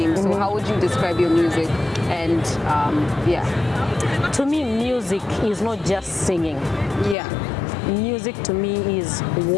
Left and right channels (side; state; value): right; drops out; at 7.2 s